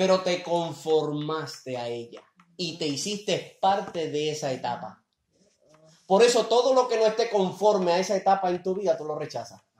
te conformaste a ella. Y te hiciste parte de esa etapa. Por eso todo lo que no esté conforme a esa etapa en tu vida, tú lo rechazas.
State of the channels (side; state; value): both; identical; correlation 1.00